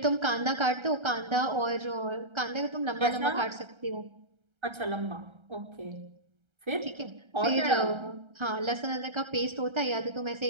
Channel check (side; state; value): left; late; 1.3 ms